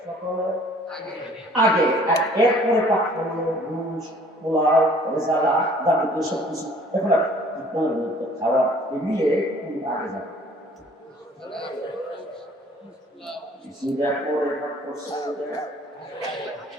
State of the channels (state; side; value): normal; both; correlation 0.54